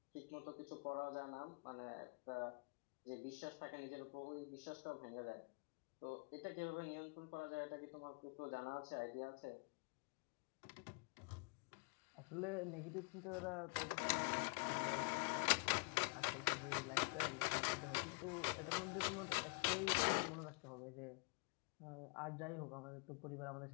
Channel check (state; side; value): quieter; right; 34.3 dB